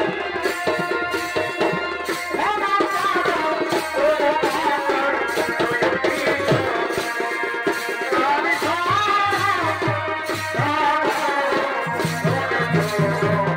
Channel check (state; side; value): identical; both; correlation 1.00